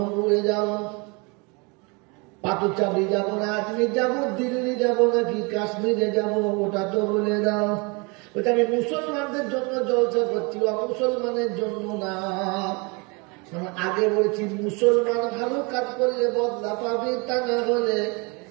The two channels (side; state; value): left; quieter; 29.9 dB